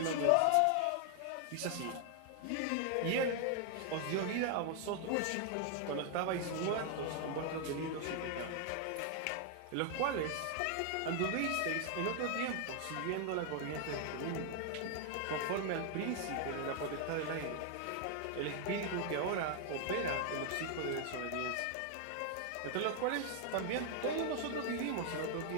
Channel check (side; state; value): both; different; correlation 0.00